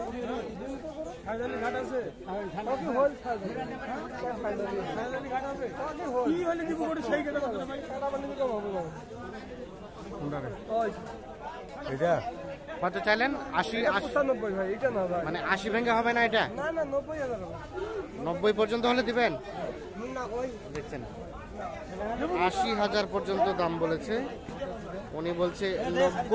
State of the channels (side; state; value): both; identical; correlation 1.00